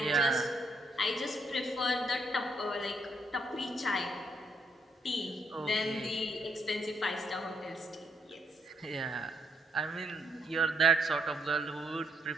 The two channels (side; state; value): both; normal; correlation 0.73